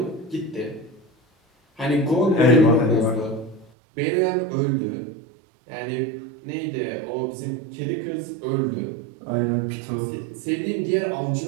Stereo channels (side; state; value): left; drops out; at 3.7 s